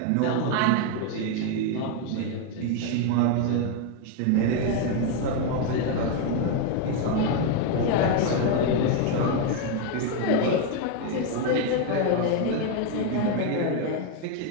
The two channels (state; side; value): different; both; correlation 0.01